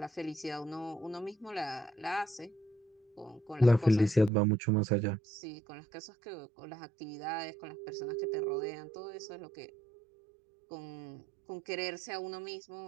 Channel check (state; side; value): drops out; left; at 4.3 s